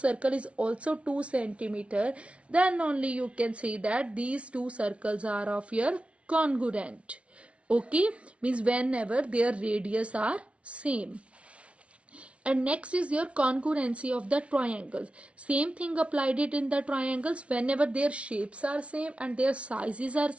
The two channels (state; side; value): late; left; 0.062 ms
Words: is also 2 centimeter, then only you can say that these two circles are of your congruent. Okay, means whenever their radius are same. And next is your congruency of the triangles. Same thing applied it in the triangles. Whenever their shapes are same and their sizes are